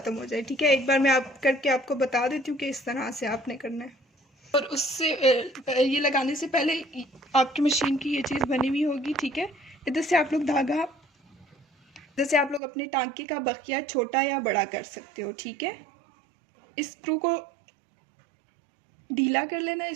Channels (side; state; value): left; drops out; at 12.6 s